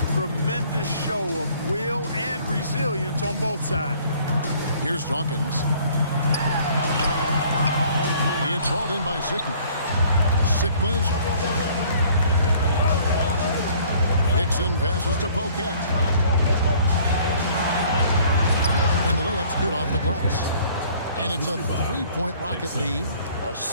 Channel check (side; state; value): both; inverted; correlation -0.56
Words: Tremendous show of will and resilience on both sides. Here's Dawkins. It's hauled in by Sickman. Sickman's. Hickson passes to Pocat. And the layup's good off the glass. And it's a 3-point Rocket lead.